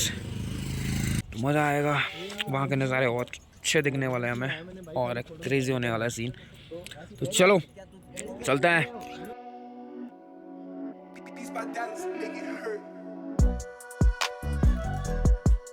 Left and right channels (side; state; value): both; identical; correlation 1.00